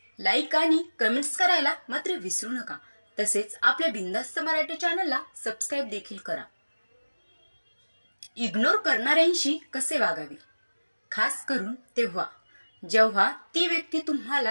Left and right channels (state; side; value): inverted; both; correlation -1.00